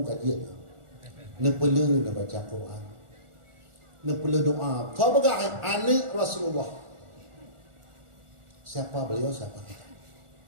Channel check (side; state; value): left; late; 1.4 ms